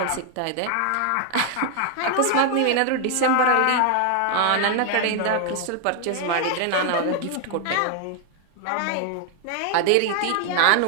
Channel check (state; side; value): different; both; correlation 0.00